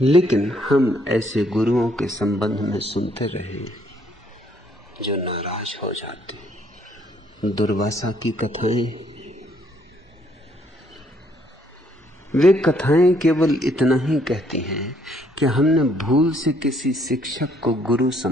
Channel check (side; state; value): both; normal; correlation 0.67